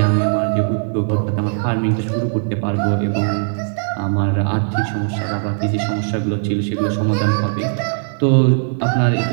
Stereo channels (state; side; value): silent; left; 64 dB below the other